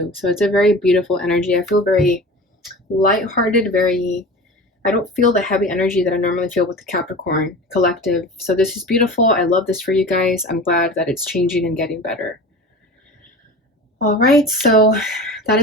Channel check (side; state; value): both; normal; correlation 0.35